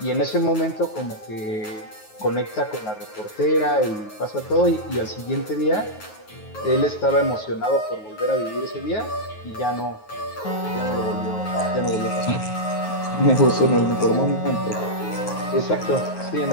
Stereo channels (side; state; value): right; late; 9.4 ms